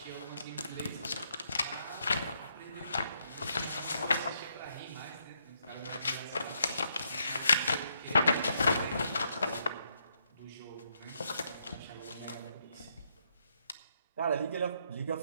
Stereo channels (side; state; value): both; inverted; correlation -0.76